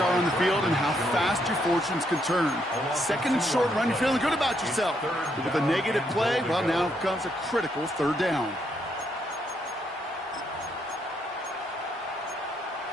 on the field and how fast your fortunes can turn. 2nd and short run, you're feeling good about yourself. But with a negative play, well, now comes a critical 3rd down.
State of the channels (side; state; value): both; normal; correlation 0.75